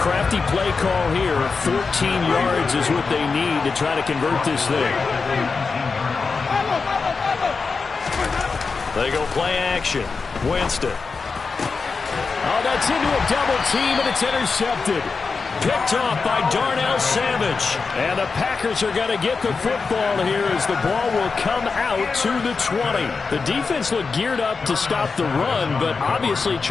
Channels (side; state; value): right; quieter; 4.7 dB